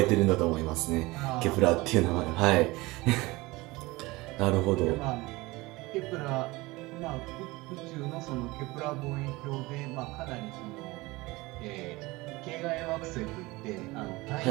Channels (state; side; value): quieter; left; 21.6 dB